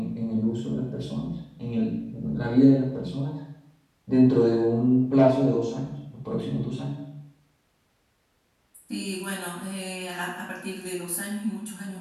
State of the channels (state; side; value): identical; both; correlation 1.00